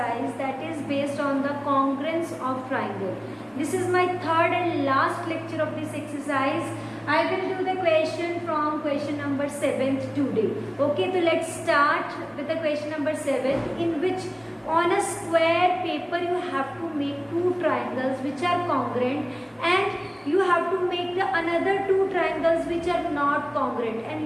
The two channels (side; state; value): both; identical; correlation 1.00